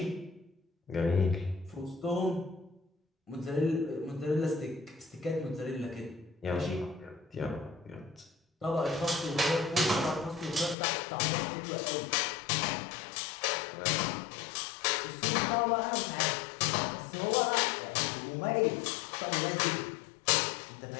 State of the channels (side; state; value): right; drops out; at 10.8 s